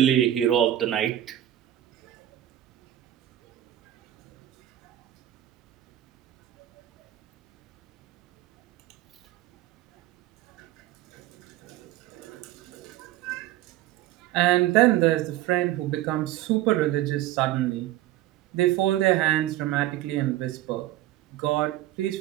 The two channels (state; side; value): quieter; left; 13.6 dB